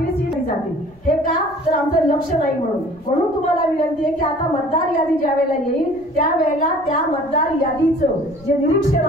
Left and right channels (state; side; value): noise; left; rumble, 27 dB below the sound